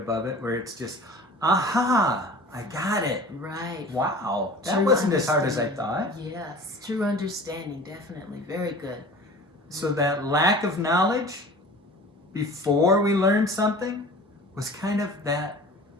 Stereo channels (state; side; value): normal; both; correlation 0.41